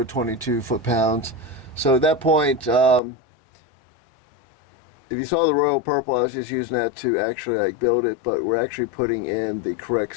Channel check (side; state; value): right; drops out; at 3.0 s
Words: 22 foot-pounds. So at that point, if you saw the royal purple, I was just using that to actually like build it, but we're actually putting in the correct